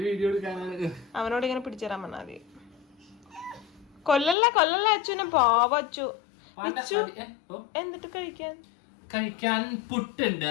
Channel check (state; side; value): drops out; right; at 4.4 s